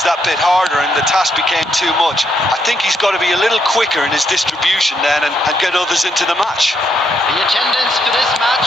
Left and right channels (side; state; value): both; normal; correlation 0.76